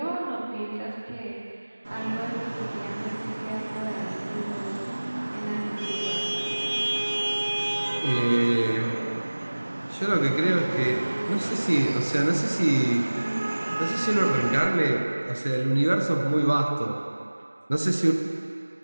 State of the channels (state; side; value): inverted; both; correlation -1.00